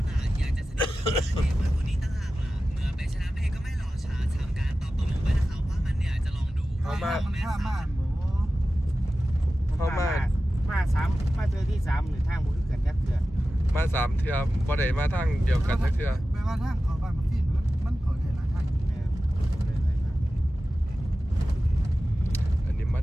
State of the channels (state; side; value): normal; both; correlation 0.95